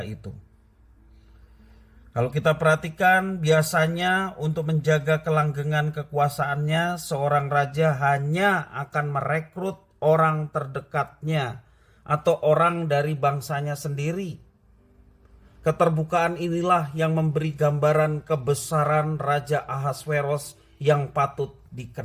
itu. Kalau kita perhatikan, biasanya untuk menjaga kelanggengan kekuasaannya, seorang raja hanya akan merekrut orang terdekatnya atau orang dari bangsanya sendiri. Keterbukaan inilah yang memberi gambaran kebesaran Raja Ahasveros yang patut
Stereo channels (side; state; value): both; identical; correlation 1.00